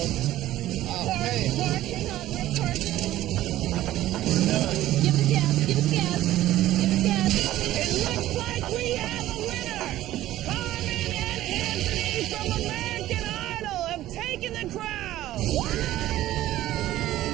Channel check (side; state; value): left; quieter; 14.5 dB